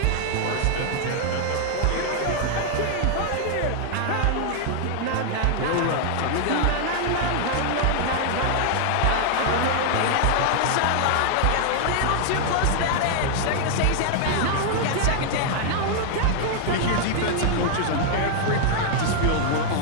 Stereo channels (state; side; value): different; both; correlation 0.00